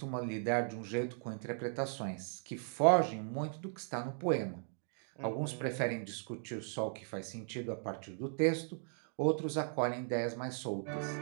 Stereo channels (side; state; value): left; silent; 53 dB below the other